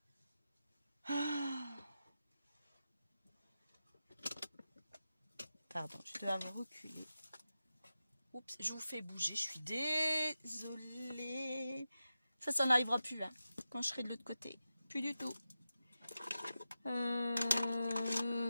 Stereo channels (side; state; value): both; inverted; correlation -0.91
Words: Pardon, je dois avoir reculé. Oups, je vous fais bouger, je suis désolée. Ça n'arrivera plus, hein, quand je serai de l'autre côté. Plus du tout. Voilà,